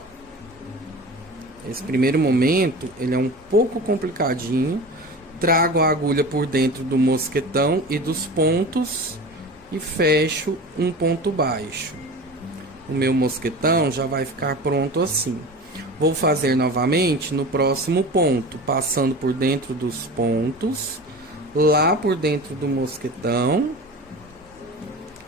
esse primeiro momento, ele é um pouco complicadinho. Trago a agulha por dentro do mosquetão e dos pontos e fecho um ponto baixo. O meu mosquetão já vai ficar pronto assim. Vou fazer novamente no próximo ponto, passando por dentro dos pontos, lá por dentro do mosquetão.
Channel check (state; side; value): normal; both; correlation 0.34